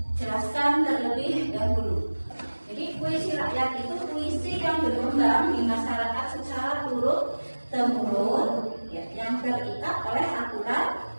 jelaskan terlebih dahulu. Jadi puisi rakyat itu puisi yang berkembang di masyarakat secara turun temurun, ya, yang terikat oleh aturan.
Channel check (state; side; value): inverted; both; correlation -1.00